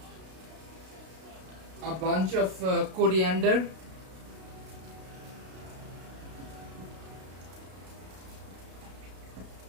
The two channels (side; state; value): left; late; 32 ms